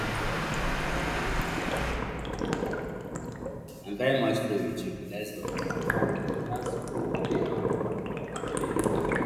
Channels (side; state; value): both; identical; correlation 1.00